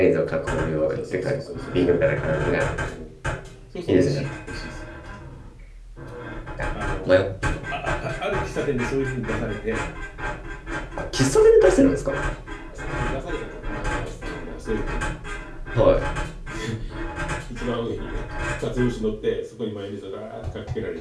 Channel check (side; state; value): both; identical; correlation 1.00